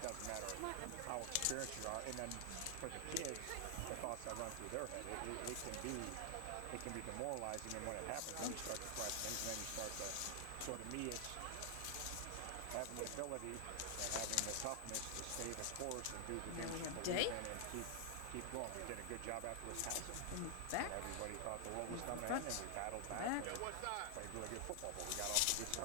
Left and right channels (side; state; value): both; different; correlation 0.00